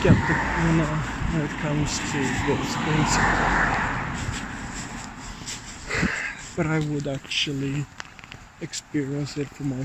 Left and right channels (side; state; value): both; identical; correlation 1.00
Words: when it comes to those things. But I would actually experience it for